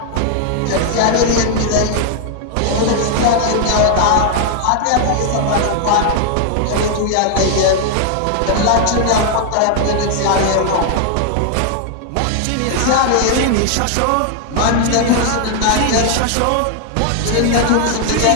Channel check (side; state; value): both; different; correlation 0.00